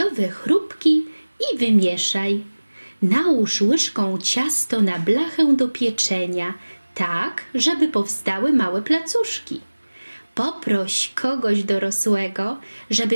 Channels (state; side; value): inverted; both; correlation -1.00